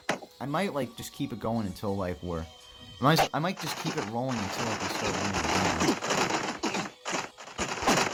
I might, like, just keep it going until, like, we're... I might just keep it rolling until, like, we start winning a game.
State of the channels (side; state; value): both; identical; correlation 1.00